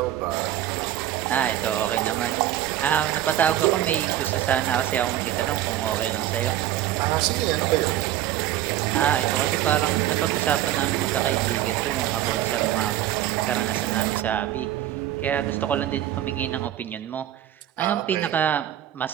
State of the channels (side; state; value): left; quieter; 12.6 dB